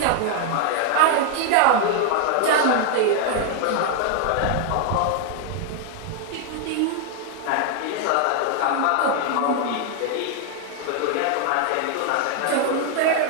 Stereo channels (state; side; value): different; both; correlation 0.00